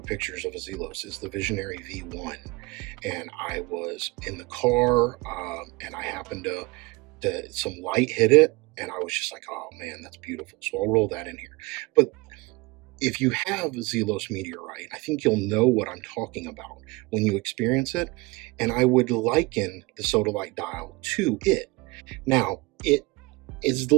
pictures of a Zelos is the Visionary V1. And I was in the car, and I happened to some light hit it, and I was just like, oh man, that's beautiful. So I'll roll that in here. But if you have Zelos meteorite, I think you'll know what I'm talking about when you experience it. And I would liken the Sodalite Dial to it. Now, it is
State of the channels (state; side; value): quieter; left; 23.8 dB